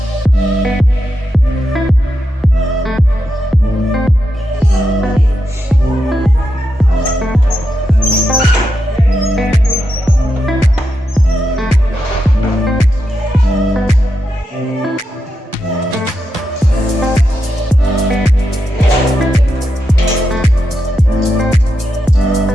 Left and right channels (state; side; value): normal; both; correlation 0.86